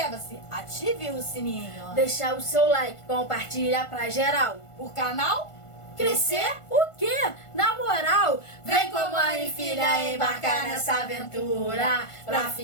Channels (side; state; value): right; late; 1.5 ms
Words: ative o sininho. deixar o seu like, compartilha pra geral. O canal Crescer o quê? Na moral, vem com mãe e filha embarcar nessa aventura pra